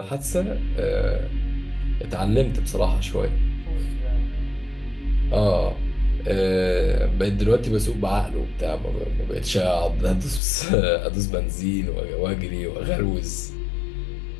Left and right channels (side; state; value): right; drops out; at 10.4 s